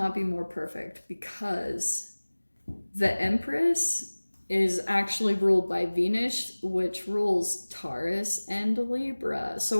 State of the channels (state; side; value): inverted; both; correlation -1.00